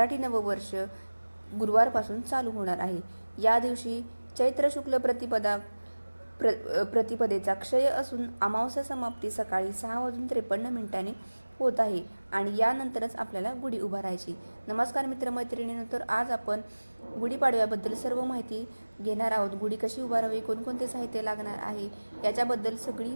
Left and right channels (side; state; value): both; inverted; correlation -1.00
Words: नववर्ष गुरुवारपासून चालू होणार आहे. या दिवशी चैत्र शुक्ल प्रतिपदेचा क्षय असून अमावस्या समाप्ती सकाळी 6:53 होत आहे आणि यानंतरच आपल्याला गुढी उभारायची. नमस्कार मित्रमैत्रिणींनो, तर आज आपण गुढीपाडव्याबद्दल सर्व माहिती घेणार आहोत. गुढी कशी उभारावी, कोणकोणते साहित्य लागणार आहे याच्याबद्दल सगळी